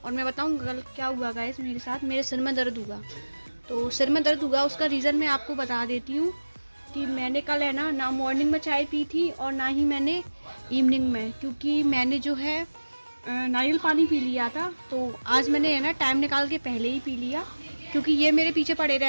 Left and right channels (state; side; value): inverted; both; correlation -1.00